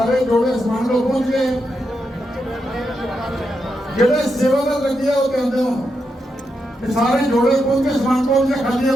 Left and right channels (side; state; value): both; normal; correlation 0.84